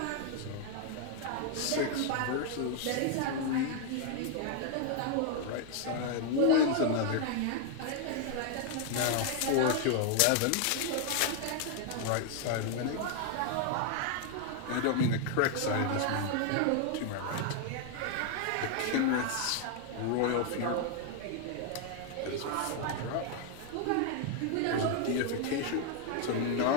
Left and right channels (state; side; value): different; both; correlation 0.00